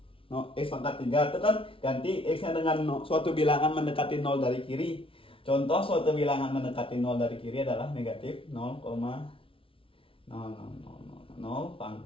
x pangkat 3 itu kan ganti x-nya dengan suatu bilangan mendekati 0 dari kiri. Contoh suatu bilangan mendekati 0 dari kiri adalah negatif 0,0000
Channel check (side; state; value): right; late; 0.26 ms